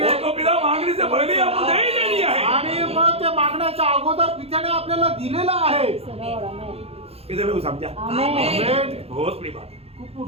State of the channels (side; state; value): left; late; 0.29 ms